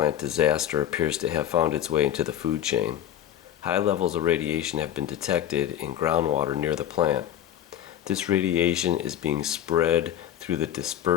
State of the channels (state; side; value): quieter; right; 10.9 dB